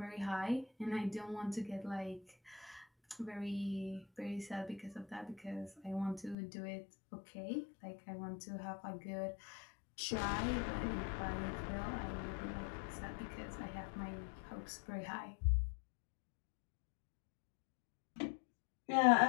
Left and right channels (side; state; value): right; drops out; at 6.4 s